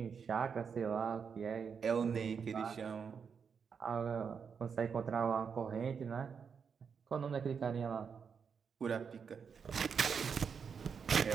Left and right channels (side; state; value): left; quieter; 6.4 dB